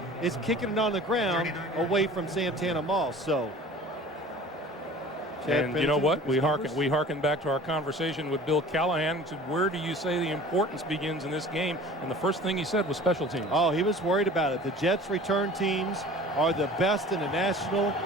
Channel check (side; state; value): both; normal; correlation 0.44